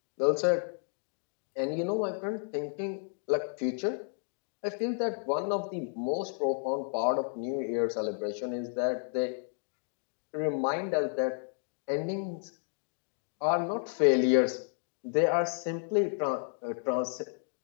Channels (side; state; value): right; silent; 56 dB below the other